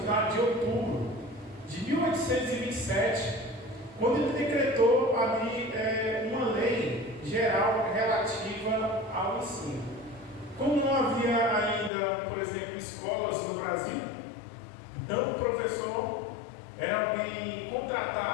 outubro de 1827, quando ele decretou ali uma lei geral relativa ao ensino. Como não havia ainda, por exemplo, escolas no Brasil, então o professor era bem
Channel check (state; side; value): drops out; right; at 11.9 s